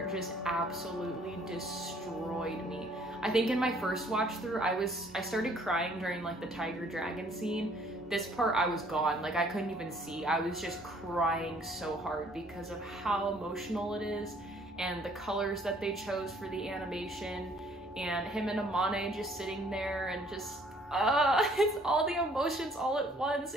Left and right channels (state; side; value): normal; both; correlation 0.60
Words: just absolutely destroyed me. I think in my first watch through, I started crying during like the tiger dragon scene. This part I was gone, like I couldn't even see. I was just crying so hard because of how emotional it is and the colors that they chose for the animation, and him and Amane just sitting there and just it's all the emotions all at once.